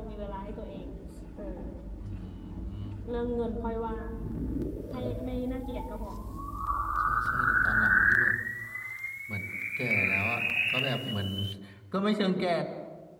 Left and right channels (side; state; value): both; identical; correlation 1.00